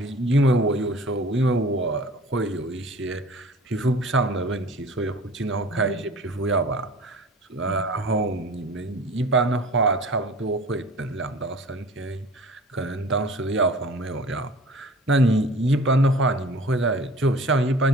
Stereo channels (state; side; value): normal; both; correlation 0.44